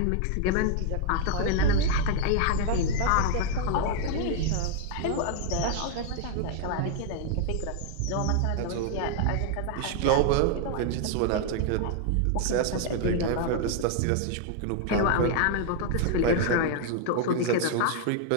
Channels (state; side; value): different; both; correlation 0.00